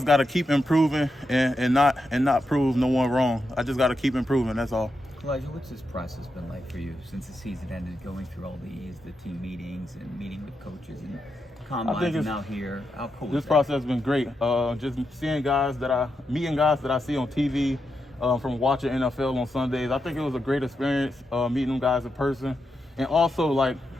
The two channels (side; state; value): both; normal; correlation 0.85